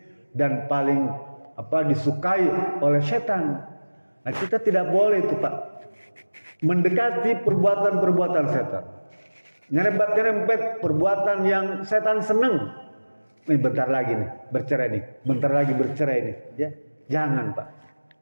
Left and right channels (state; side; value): inverted; both; correlation -1.00